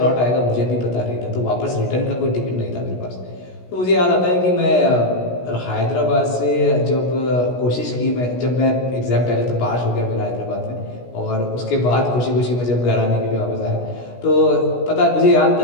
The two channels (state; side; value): late; right; 16 ms